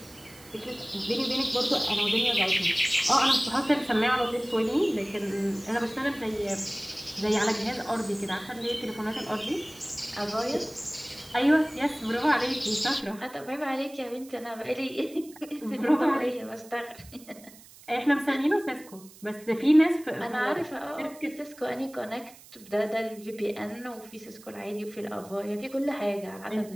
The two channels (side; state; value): right; noise; hiss, 21 dB below the sound